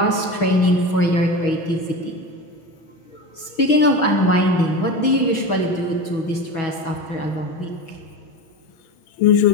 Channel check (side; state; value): right; late; 6.2 ms